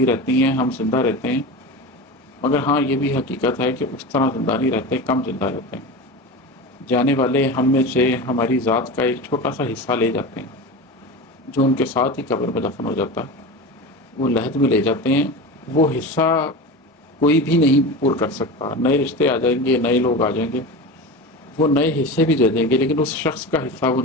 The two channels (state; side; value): normal; both; correlation 0.27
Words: رہتی ہیں، ہم زندہ رہتے ہیں، مگر ہاں یہ بھی حقیقت ہے کہ اس طرح زندہ نہیں رہتے، کم زندہ رہتے ہیں۔ جانے والے ہم میں سے ہماری ذات کا ایک چھوٹا سا حصہ لے جاتے ہیں، جو ان کے ساتھ ہی قبر میں دفن ہو جاتا ہے، وہ لحد میں لے جاتے ہیں۔ وہ حصہ کوئی بھی نہیں پور کر سکتا، نئے رشتے آ جائیں گے، نئے لوگ آ جائیں گے، وہ نئے حصے بھی دے دیں گے، لیکن اس شخص کا حصہ وہ